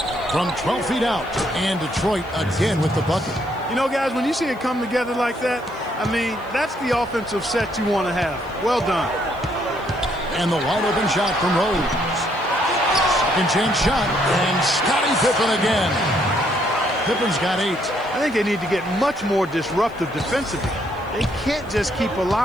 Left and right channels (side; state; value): left; noise; hiss, 28 dB below the sound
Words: from 12 feet out. And Detroit again with the bucket. You know, guys, when you see it come together like that, I mean, that's the offensive set you want to have. Well done. And the wide open shot from Rose. Second chance shot. And Scottie Pippen again. Pippen's got 8. I think they need to get much more disruptive defensively. They can't just keep